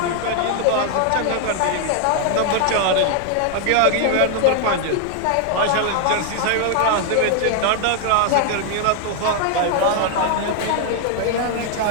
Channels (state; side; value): different; both; correlation 0.00